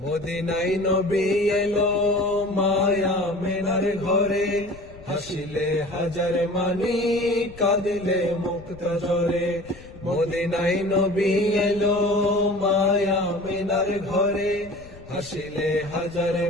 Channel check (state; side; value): noise; left; rumble, 19 dB below the sound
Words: মদিনায় নবী এলো মায়া মেনার ঘরে, হাসিলে হাজার মানি কাঁদিলে মুক্ত ঝরে। মদিনায় নবী এলো মায়া মিনার ঘরে, হাসিলে হাজার